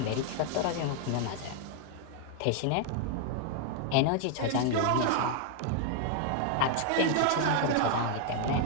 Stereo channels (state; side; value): different; both; correlation 0.00